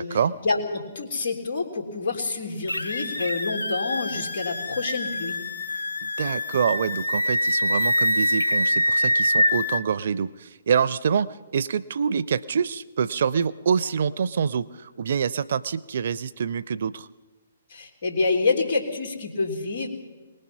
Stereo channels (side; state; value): both; inverted; correlation -0.82